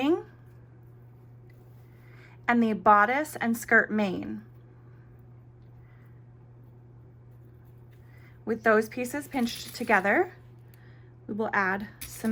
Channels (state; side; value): identical; both; correlation 1.00